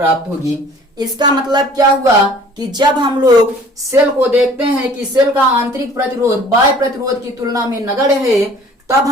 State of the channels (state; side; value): normal; both; correlation 0.51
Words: होगी। इसका मतलब क्या हुआ कि जब हम लोग सेल को देखते हैं कि सेल का आंतरिक प्रतिरोध बाह्य प्रतिरोध की तुलना में नगण्य है, तब